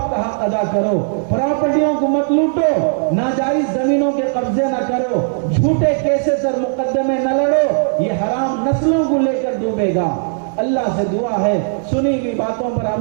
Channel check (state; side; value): silent; left; digital silence